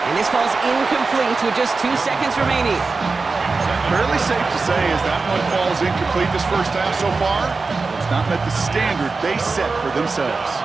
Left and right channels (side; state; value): left; quieter; 4.1 dB